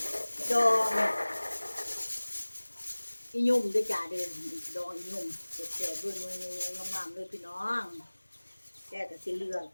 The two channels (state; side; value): inverted; both; correlation -1.00